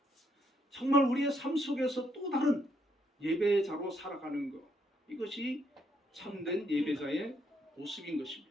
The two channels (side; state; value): both; normal; correlation 0.74